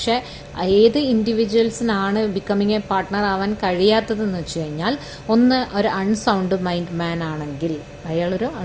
ഏത് ഇൻഡിവിജ്വൽസിനാണ് ബിക്കമിങ് എ പാർട്ട്ണർ ആവാൻ കഴിയാത്തതെന്ന് വെച്ച് കഴിഞ്ഞാൽ, ഒന്ന് ഒരു അൺസൗണ്ട് മൈൻഡ് മാൻ ആണെങ്കിൽ, അയാളൊരു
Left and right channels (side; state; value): both; identical; correlation 1.00